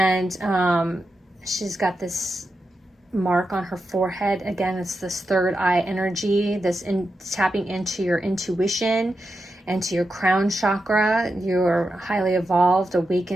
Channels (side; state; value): both; normal; correlation 0.88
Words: she's got this mark on her forehead. Again, it's this third eye energy, tapping into your intuition and to your crown chakra. You're a highly evolved,